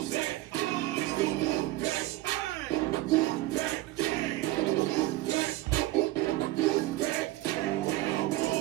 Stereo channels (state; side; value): quieter; left; 17.2 dB